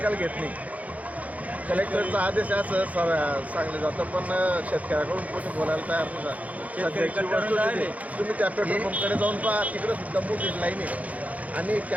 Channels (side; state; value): left; late; 0.071 ms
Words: घेत नाही। कलेक्टरचा आदेश असं सांगलं जातं, पण शेतकऱ्याकडून कोणी बोलायला तयार नाही। सध्याची वस्तू तुम्ही त्या पेट्रोल पंपकडे जाऊन पहा, तिकडे सुद्धा मोठी लाईन आहे आणि